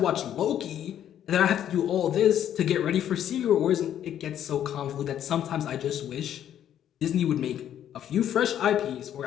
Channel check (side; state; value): right; quieter; 10.5 dB